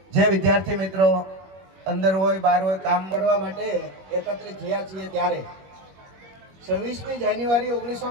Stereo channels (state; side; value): late; left; 21 ms